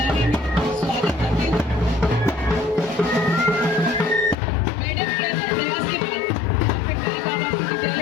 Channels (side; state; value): right; drops out; at 4.4 s